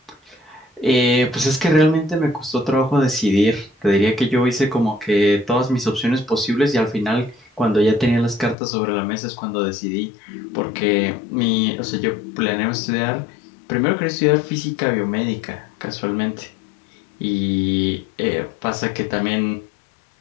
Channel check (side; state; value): right; drops out; at 8.6 s